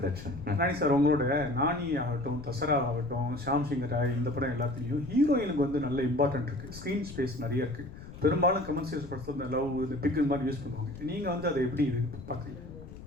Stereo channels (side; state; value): left; noise; rumble, 14 dB below the sound